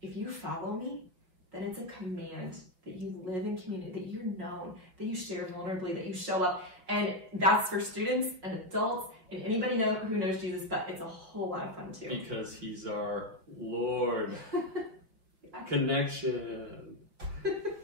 if you follow me, then it's a command that you live in community, that you're known, that you share vulnerably, that you show up. And that's for students and adults and anybody who knows Jesus, but it's a whole lot of fun too. Because he's our Lord. Connection.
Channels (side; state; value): left; late; 5.3 ms